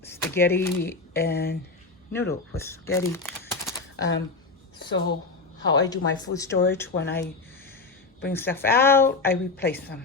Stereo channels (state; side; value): quieter; right; 3.9 dB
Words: spaghetti and noodle with spaghetti. So how I do my food storage, when I bring stuff out, I replace them.